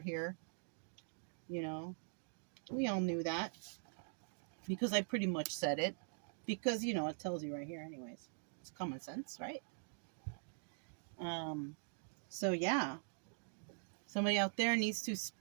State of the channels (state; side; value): silent; left; digital silence